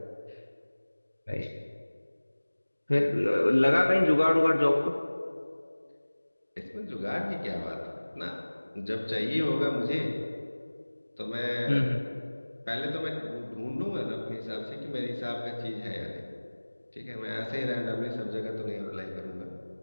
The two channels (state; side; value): inverted; both; correlation -1.00